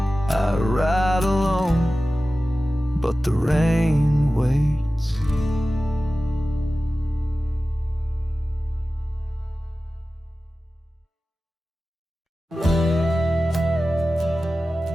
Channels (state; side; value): normal; both; correlation 0.95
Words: I ride alone, but the rain waits.